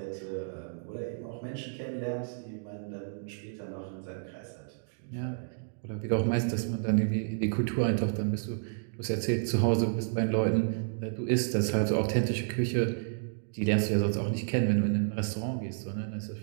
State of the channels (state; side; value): silent; left; digital silence